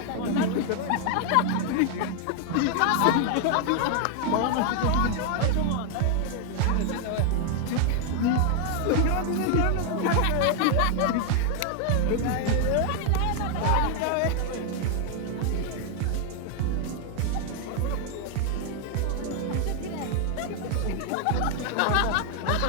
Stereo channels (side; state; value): both; different; correlation 0.00